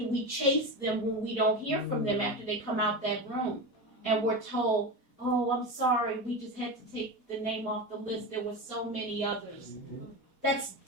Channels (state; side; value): late; right; 4.2 ms